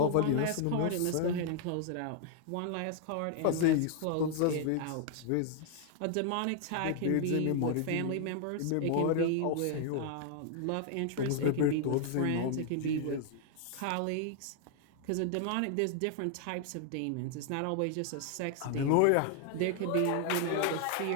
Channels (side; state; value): both; different; correlation 0.00